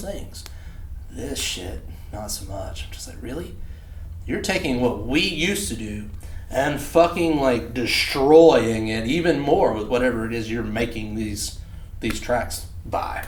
things. This shit, not so much. I'm just like, really? You're taking what we used to do and fucking, like, destroying it even more with whatever it is you're making these tracks by.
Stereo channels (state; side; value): identical; both; correlation 1.00